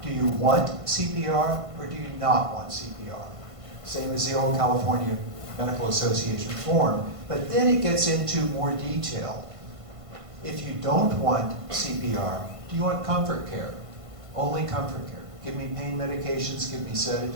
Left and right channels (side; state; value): left; late; 1.5 ms